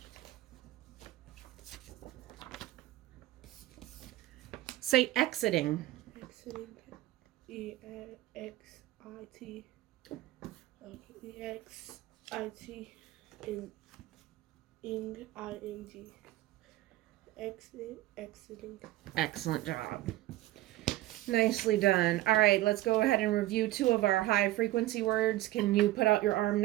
Say exiting. Exiting. EXIT. EXIT. ING. Exiting. Excellent job. Nicely done. All right, let's go ahead and review 2 of our high frequency words. Can you put out your arm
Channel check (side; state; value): left; quieter; 16.2 dB